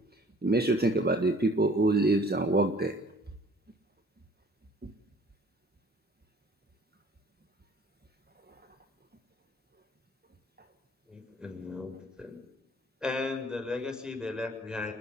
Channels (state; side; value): normal; both; correlation 0.54